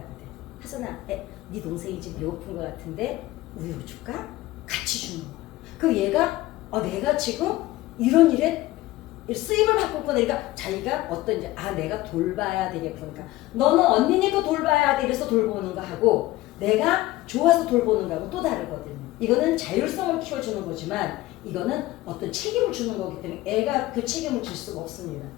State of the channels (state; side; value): quieter; right; 17.4 dB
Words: 하선아, 네 동생이 지금 배고픈 것 같은데 우유 줄까? 같이 주는 거야. 그 얘가 내가 지금 이런 일에 쓰임을 받고 있구나. 그러니까 자기가 어떤 이제 내가 돌봐야 되겠구나. 그러니까 너는 언니니까 돌봐야 돼. 이래서 돌보는 거 하고 내가 좋아서 돌보는 거하고 또 다르거든요. 이거는 자율성을 키워주는 거지만 이거는 어떤 책임을 주는 거기 때문에 애가 그 책임을 질 수가 없습니다.